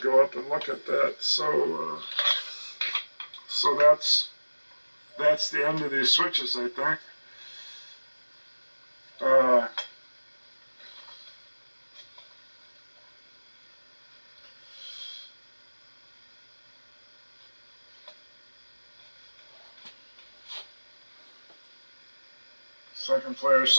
go up and look at that. So that's the end of these switches, I think. Second player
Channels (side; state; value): both; inverted; correlation -1.00